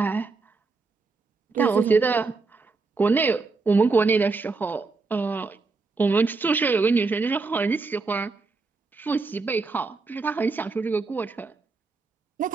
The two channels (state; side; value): quieter; left; 4.0 dB